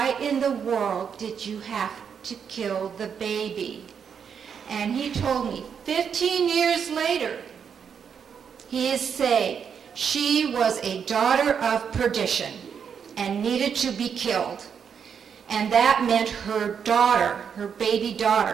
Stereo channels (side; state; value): left; quieter; 7.2 dB